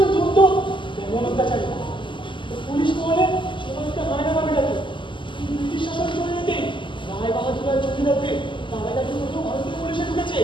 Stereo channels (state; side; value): late; right; 0.24 ms